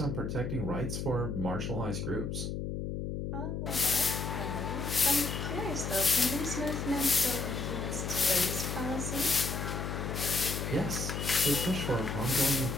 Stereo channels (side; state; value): left; noise; hum, 3 dB below the sound